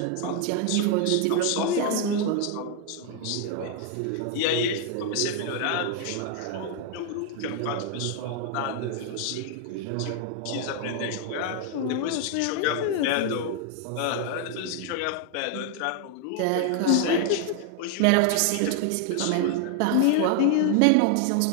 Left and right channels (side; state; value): both; different; correlation 0.00